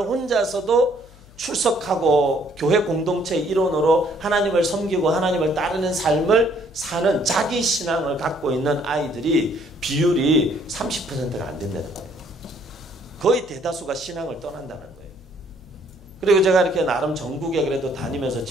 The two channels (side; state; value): left; noise; hum, 23 dB below the sound